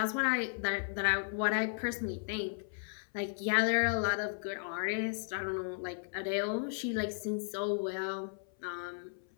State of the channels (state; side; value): silent; right; 54 dB below the other